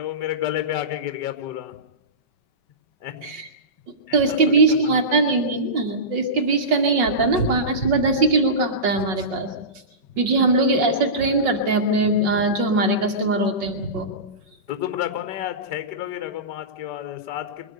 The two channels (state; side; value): late; left; 5.5 ms